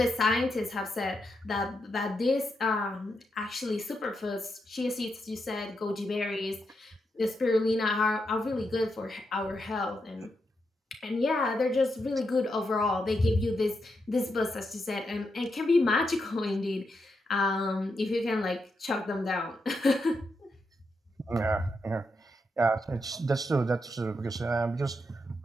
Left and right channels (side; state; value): both; normal; correlation 0.84